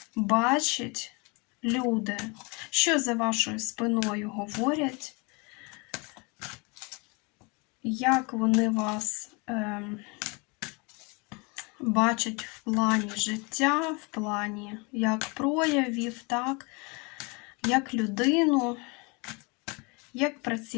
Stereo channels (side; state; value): right; quieter; 29.5 dB